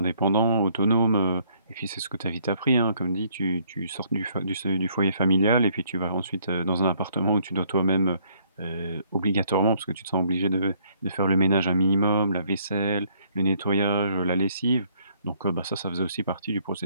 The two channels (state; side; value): inverted; both; correlation -0.66